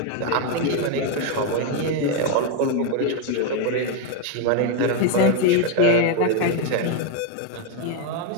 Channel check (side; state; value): both; different; correlation 0.01